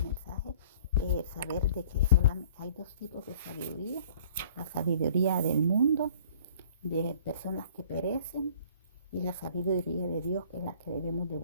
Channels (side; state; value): both; inverted; correlation -0.52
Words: mensaje, saber de que solamente hay dos tipos de sabiduría: la sabiduría del mundo, de personas que perecen, y la sabiduría de Dios, que es la que debemos de